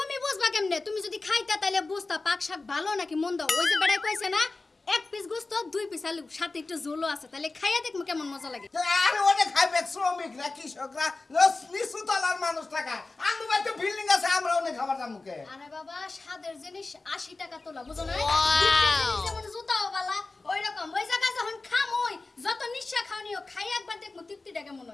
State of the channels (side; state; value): right; quieter; 3.5 dB